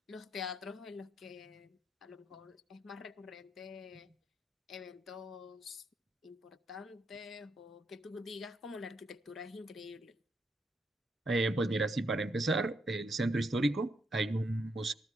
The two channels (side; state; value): both; normal; correlation 0.78